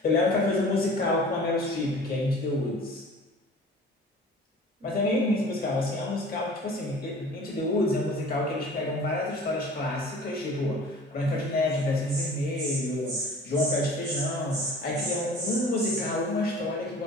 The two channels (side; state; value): both; normal; correlation 0.44